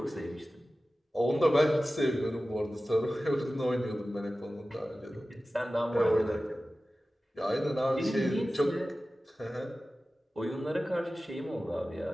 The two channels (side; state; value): both; normal; correlation 0.95